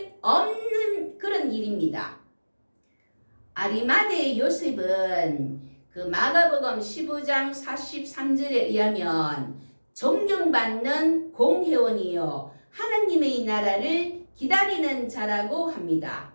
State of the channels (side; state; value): both; inverted; correlation -1.00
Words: 없는 그런 일입니다. 아리마대 요셉은 그 마가복음 15장 43절에 의하면 존경받는 공회원이요 하나님의 나라를 기다리는 자라고 합니다.